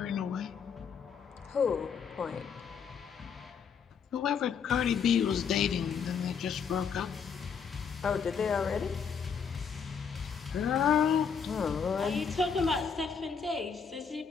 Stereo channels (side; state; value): right; quieter; 6.5 dB